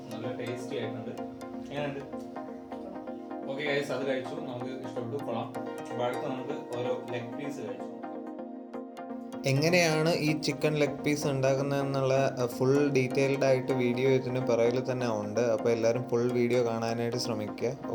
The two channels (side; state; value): both; identical; correlation 1.00